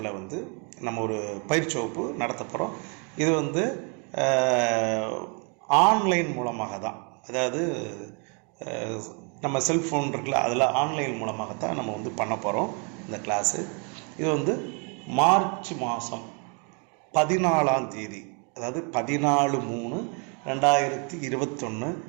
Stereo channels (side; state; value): left; quieter; 36.2 dB